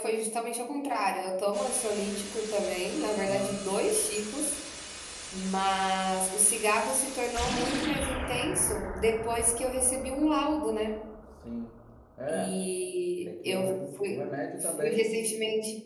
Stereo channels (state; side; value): identical; both; correlation 1.00